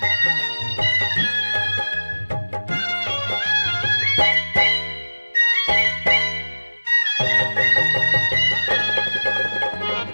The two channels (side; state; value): both; inverted; correlation -1.00